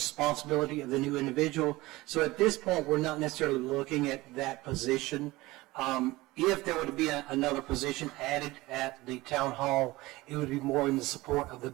of the new individual. So at this point, we're not necessarily looking at that position. If there were to be another position added at the town hall, it would be more in the support of the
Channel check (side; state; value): left; quieter; 19.8 dB